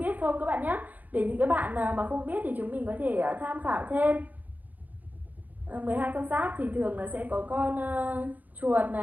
không các bạn nhé. Để những cái bạn nào mà không biết thì chúng mình có thể tham khảo thêm. 12 con giáp thì thường là sẽ có con chuột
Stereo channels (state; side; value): late; left; 0.082 ms